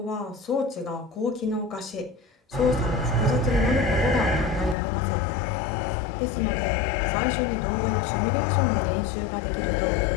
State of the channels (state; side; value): drops out; right; at 4.8 s